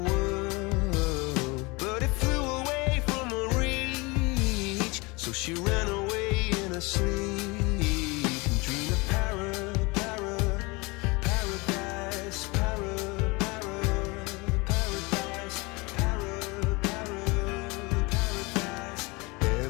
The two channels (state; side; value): quieter; right; 25.8 dB